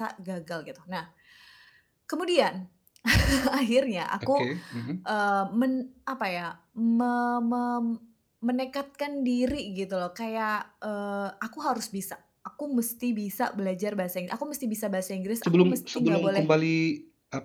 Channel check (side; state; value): both; identical; correlation 1.00